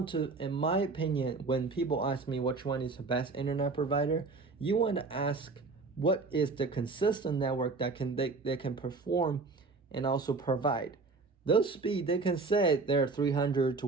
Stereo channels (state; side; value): quieter; left; 4.0 dB